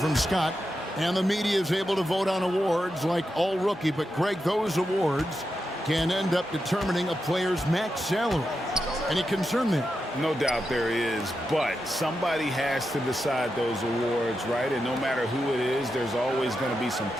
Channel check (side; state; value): both; normal; correlation 0.88